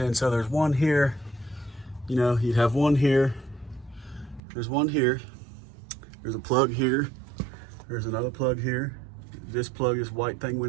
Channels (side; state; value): left; drops out; at 4.4 s